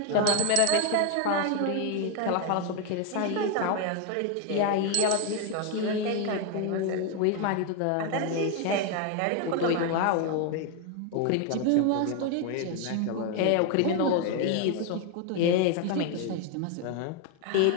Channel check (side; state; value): both; different; correlation 0.01